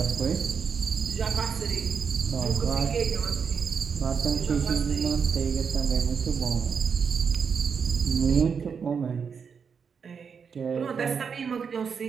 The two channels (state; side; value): quieter; left; 6.3 dB